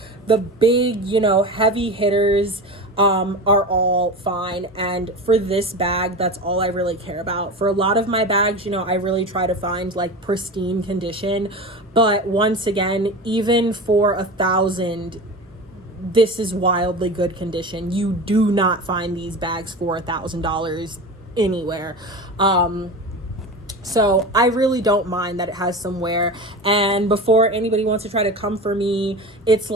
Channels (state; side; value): normal; both; correlation 0.28